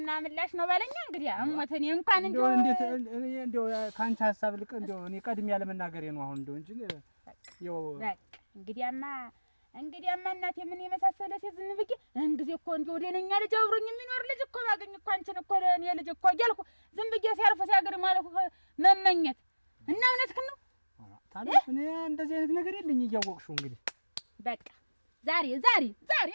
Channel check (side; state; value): both; inverted; correlation -1.00